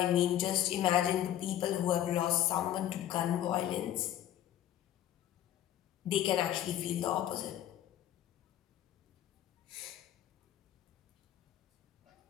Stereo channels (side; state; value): right; quieter; 11.9 dB